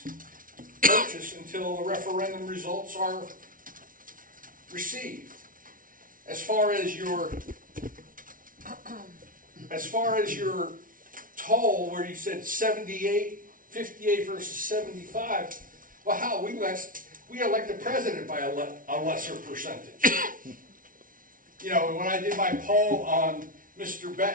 purchase until the referendum results are received. As far as your toll, where you said 78, 58 versus 75, well, how, we elect the president by a lesser percentage. You know, when I did my poll on Mr.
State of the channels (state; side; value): late; left; 0.39 ms